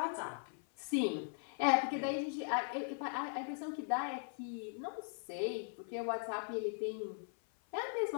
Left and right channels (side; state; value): right; silent; 51 dB below the other